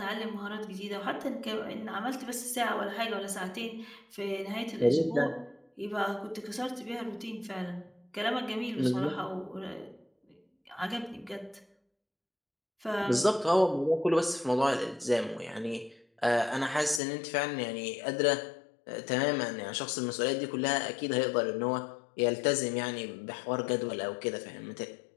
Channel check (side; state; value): right; drops out; at 17.0 s